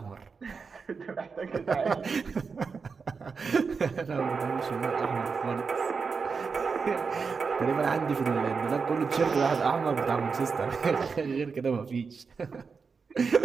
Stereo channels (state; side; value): quieter; left; 5.2 dB